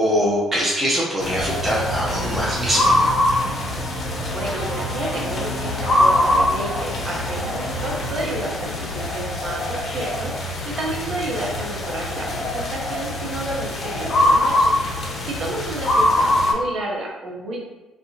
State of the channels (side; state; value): both; normal; correlation 0.71